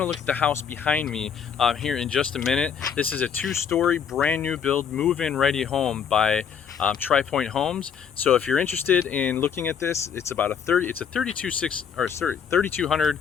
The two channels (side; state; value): right; quieter; 7.4 dB